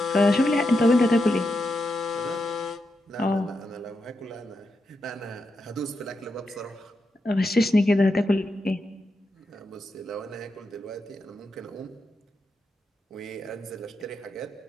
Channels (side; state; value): both; normal; correlation 0.86